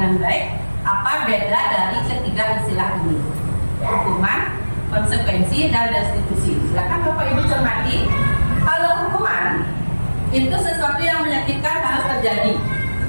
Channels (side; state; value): both; inverted; correlation -1.00